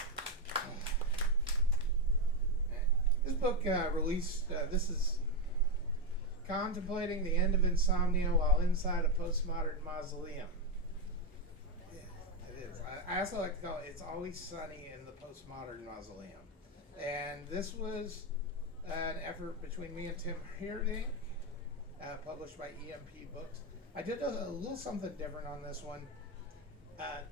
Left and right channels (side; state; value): both; normal; correlation 0.06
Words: This book released, this is Contemplating the End of Insomnia While Inside a Postmodern Mausoleum. Yeah, it is. I also like to call it It's Always Sunny in the Postmodern Mausoleum. And this was an effort between me and Tim Hierdink, published by EMP Books. I did a little something different on this one.